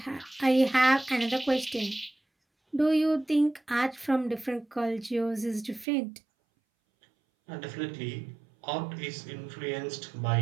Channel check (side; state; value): left; drops out; at 5.9 s